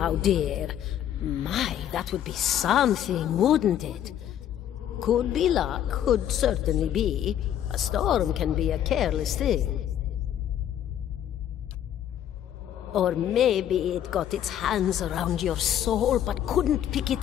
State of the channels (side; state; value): right; quieter; 10.5 dB